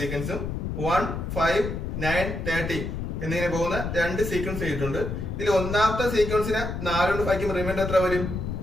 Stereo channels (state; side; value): noise; left; rumble, 4 dB below the sound